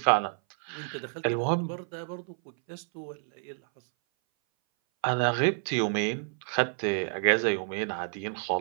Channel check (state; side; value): silent; left; 58 dB below the other